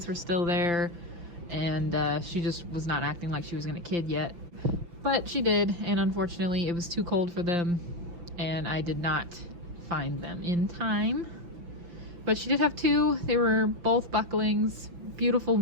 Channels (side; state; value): left; late; 6.0 ms